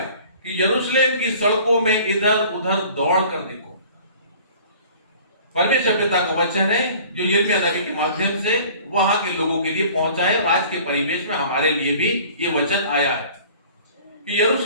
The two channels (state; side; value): inverted; both; correlation -0.48